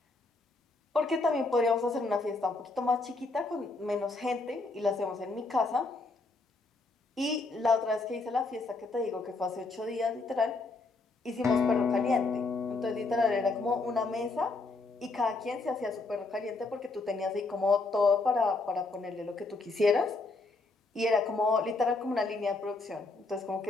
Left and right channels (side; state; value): right; quieter; 3.5 dB